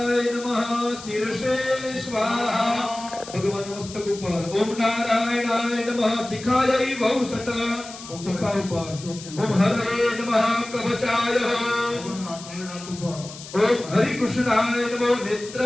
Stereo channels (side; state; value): left; noise; hiss, 14 dB below the sound